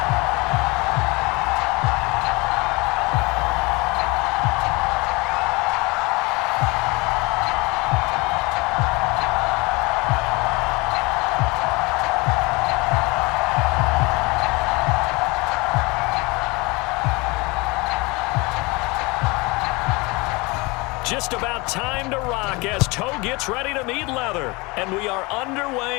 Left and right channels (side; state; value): right; quieter; 25.4 dB